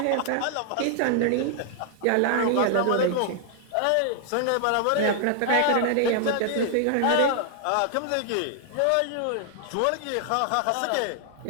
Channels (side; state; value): both; different; correlation 0.00